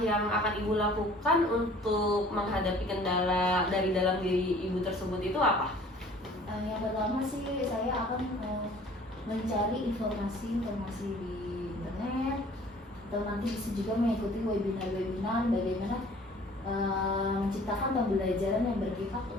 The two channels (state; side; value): normal; both; correlation 0.51